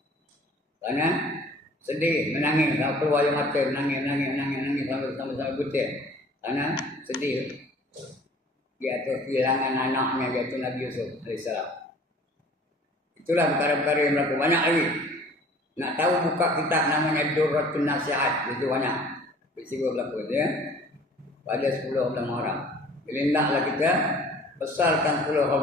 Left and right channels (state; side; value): normal; both; correlation 0.50